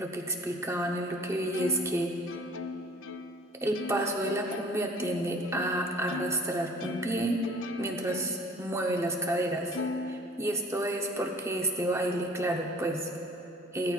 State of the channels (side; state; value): both; normal; correlation 0.50